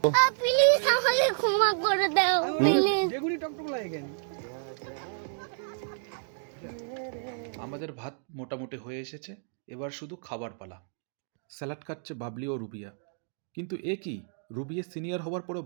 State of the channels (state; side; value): silent; left; digital silence